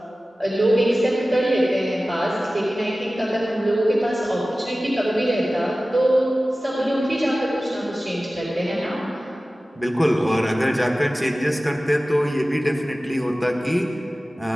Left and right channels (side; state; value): both; normal; correlation 0.96